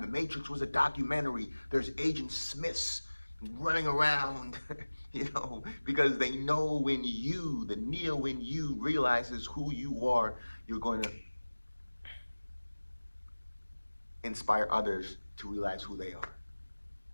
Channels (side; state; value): both; inverted; correlation -1.00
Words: The Matrix was a documentary. There's Agent Smiths running around, you know, because they know when you, the Neo in you, realizes who you are, you're going to inspire others to realize who they are.